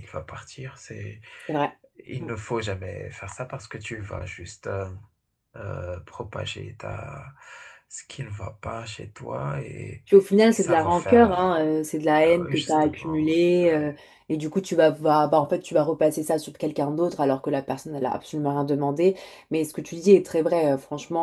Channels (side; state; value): both; identical; correlation 1.00